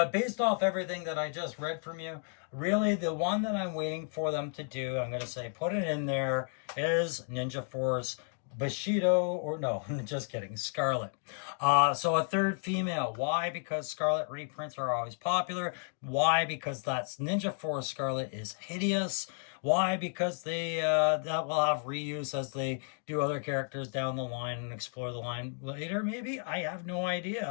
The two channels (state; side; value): silent; right; 56 dB below the other